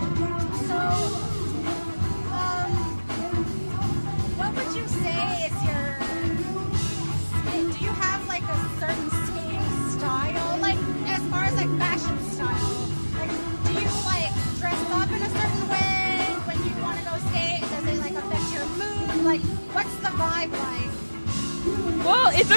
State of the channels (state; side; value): inverted; both; correlation -1.00